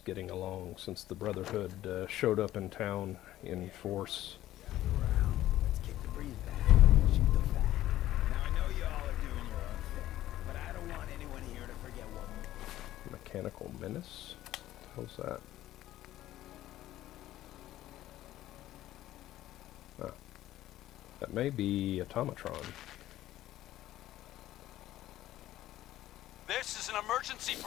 getting along since the Brotherhood showed up in town in force. Mechanical Menace? What the hell's that? Ah, that may be Automatron. This is an emergency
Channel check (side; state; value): right; quieter; 14.2 dB